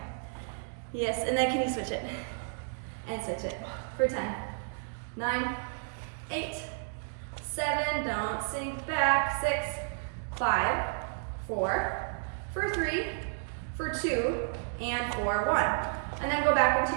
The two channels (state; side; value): silent; left; digital silence